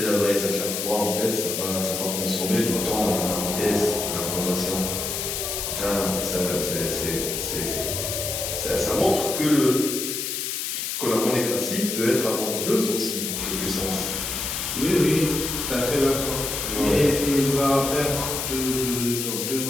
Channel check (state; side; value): noise; left; hiss, 3 dB below the sound